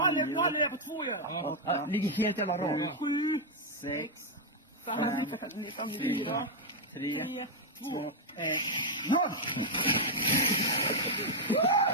har det på 2 ju. Ja, ligger helt jävla rakt. 7, 6, 5, 4, 3, 2, 1, 0!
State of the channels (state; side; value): normal; both; correlation -0.02